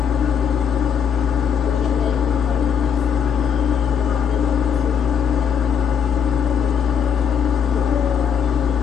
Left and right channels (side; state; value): right; quieter; 7.5 dB